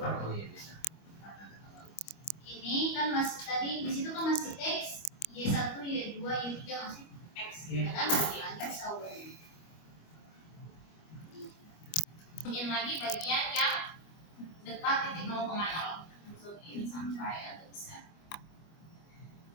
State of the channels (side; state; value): right; late; 25 ms